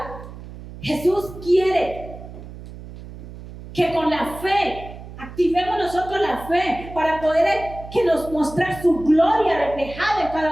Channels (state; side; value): noise; right; hum, 14 dB below the sound